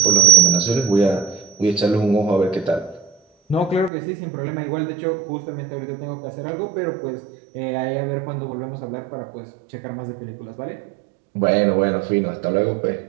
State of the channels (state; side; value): drops out; left; at 3.9 s